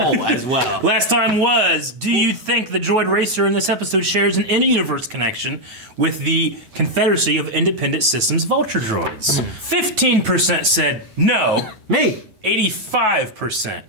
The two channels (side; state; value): left; late; 9.2 ms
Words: as well. Last time was, do you think the droid racer in this episode shares an in-universe connection with the Confederacy of Independent Systems Vulture droids? 15% said no. Me. 85%